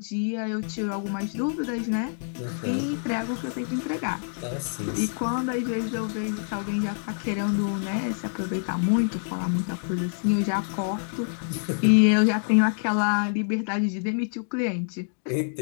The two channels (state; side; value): silent; right; digital silence